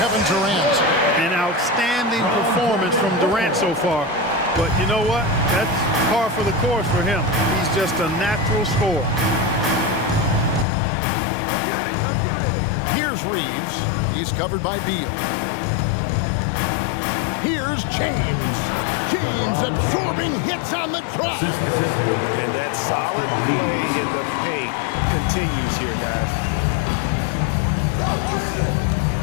Durant. An outstanding performance from Durant so far. But you know what? That's par for the course for him. He's just a natural scorer. Here's Reeves. He's covered by Beal. Here's James. James absorbing hits on the drive. And that solid play in the paint continues here, guys.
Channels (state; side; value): drops out; right; at 10.7 s